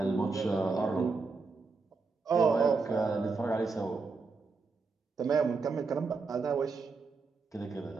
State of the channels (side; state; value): left; quieter; 4.3 dB